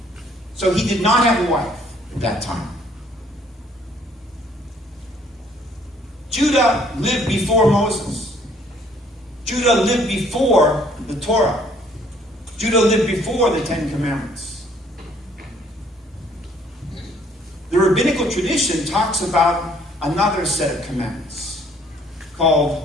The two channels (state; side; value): normal; both; correlation 0.61